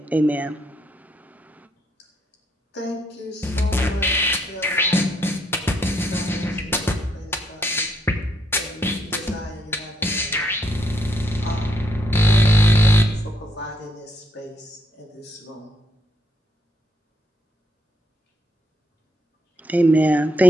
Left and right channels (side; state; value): both; normal; correlation 0.74